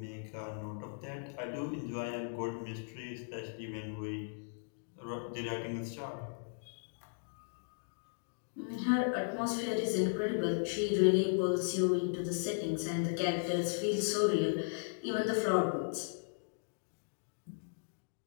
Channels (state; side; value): silent; right; digital silence